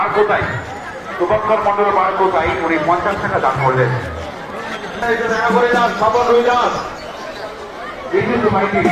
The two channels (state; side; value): identical; both; correlation 1.00